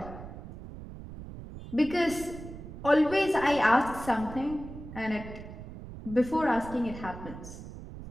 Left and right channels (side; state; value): right; noise; rumble, 12 dB below the sound